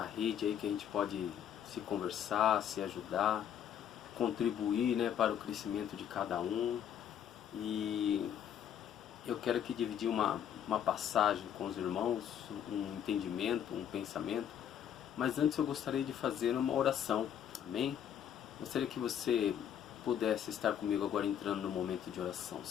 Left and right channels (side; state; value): right; quieter; 9.5 dB